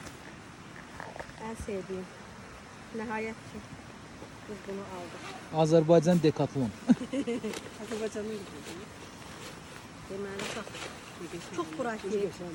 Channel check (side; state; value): both; identical; correlation 1.00